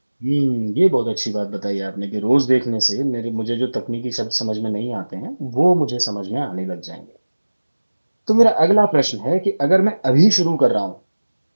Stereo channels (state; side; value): inverted; both; correlation -1.00